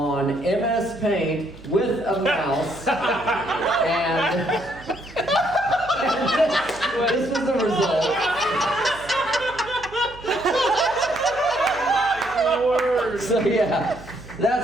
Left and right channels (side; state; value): right; noise; hum, 20 dB below the sound